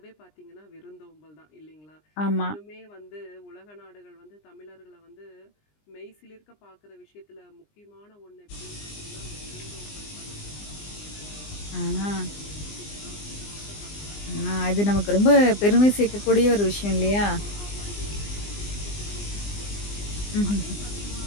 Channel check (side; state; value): right; late; 20 ms